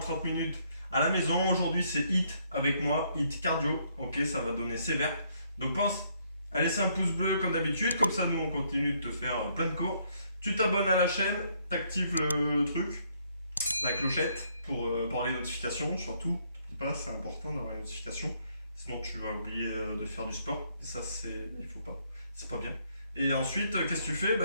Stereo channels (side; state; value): both; inverted; correlation -0.69